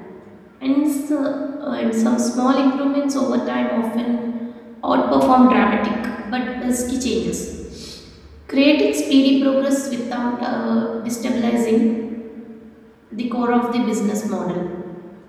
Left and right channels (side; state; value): both; identical; correlation 1.00